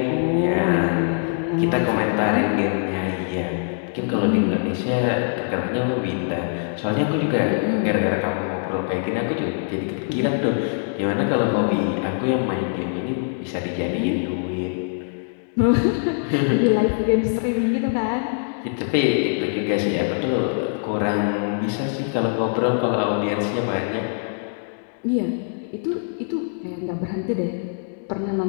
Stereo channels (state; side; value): silent; right; digital silence